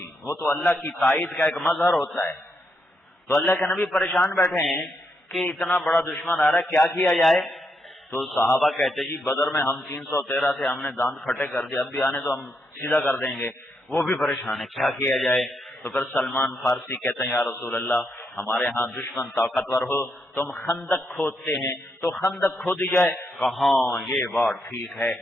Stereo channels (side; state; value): both; normal; correlation 0.80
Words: وہ تو اللہ کی تائید کا ایک مظہر ہوتا ہے. تو اللہ کے نبی پریشان بیٹھے ہیں کہ اتنا بڑا دشمن آ رہا ہے، کیا کیا جائے؟ تو صحابہ کہتے جی بدر میں ہم 313 تھے، ہم نے دانت کھٹے کر دیے، اب بھی آنے تو ہم سیدھا کر دیں گے. وہ بھی پریشان ہے، کیا کیا جائے؟ تو پھر سلمان فارسی کہتے ہیں یا رسول اللہ ہمارے ہاں دشمن طاقتور ہو، تم خندق کھودتے ہیں تو خندق کھودی جائے. کہاں یہ بات ٹھیک ہے.